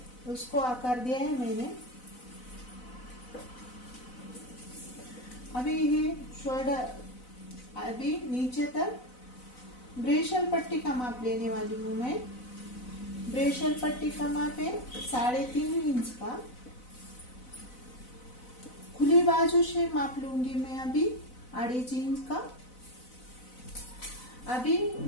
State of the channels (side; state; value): right; late; 4.0 ms